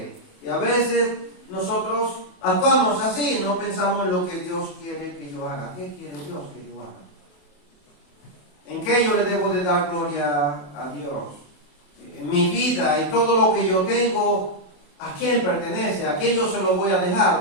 Y a veces nosotros actuamos así, no pensamos en lo que Dios quiere que yo haga. ¿Qué quiere Dios que yo haga? ¿En qué yo le debo de dar gloria a Dios? En mi vida y todo lo que yo tengo, ¿a quién pertenece? ¿A quién yo se lo voy a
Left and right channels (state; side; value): late; right; 28 ms